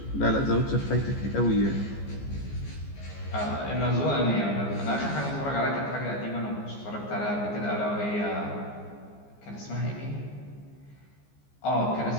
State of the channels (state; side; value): late; right; 15 ms